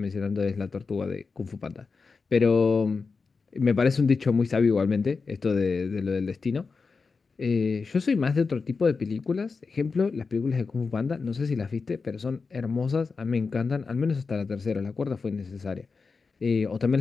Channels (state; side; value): quieter; right; 4.7 dB